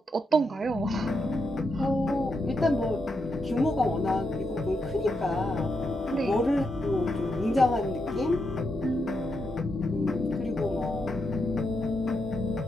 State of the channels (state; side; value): normal; both; correlation 0.83